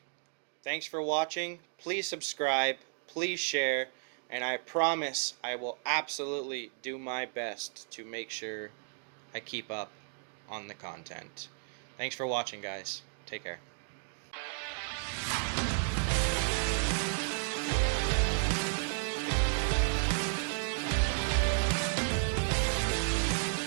Thanks for watching. Please subscribe. Please share. And I promise I will absolutely do my best to make sure I keep up on the content. Thanks for watching, guys. Take care.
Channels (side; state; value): left; silent; digital silence